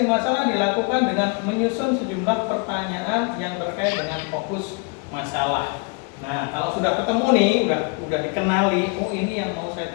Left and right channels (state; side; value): quieter; right; 32.7 dB